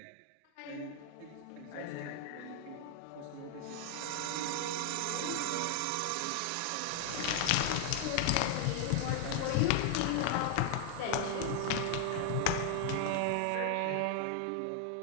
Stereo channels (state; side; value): different; both; correlation 0.00